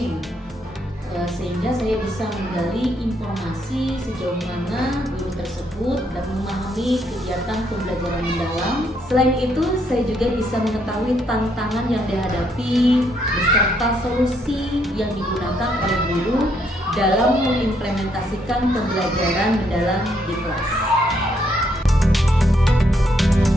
sehingga saya bisa menggali informasi sejauh mana guru tersebut dan memahami kegiatan pembelajaran mendalam. Selain itu, saya juga bisa mengetahui tantangan yang dihadapi beserta solusi yang digunakan oleh guru dalam mengimplementasikan pembelajaran mendalam di kelas.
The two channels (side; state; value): both; normal; correlation 0.73